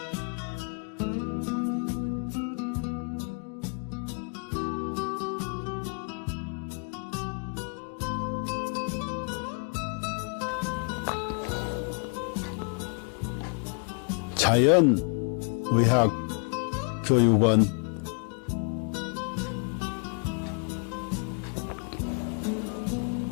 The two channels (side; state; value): right; quieter; 38.7 dB